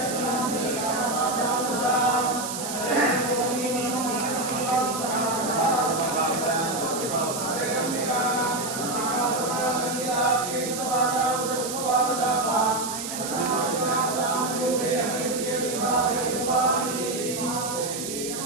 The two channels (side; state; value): right; noise; hiss, 6 dB below the sound